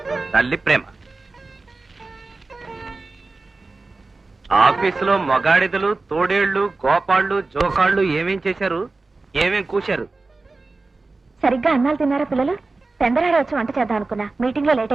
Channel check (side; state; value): left; quieter; 3.6 dB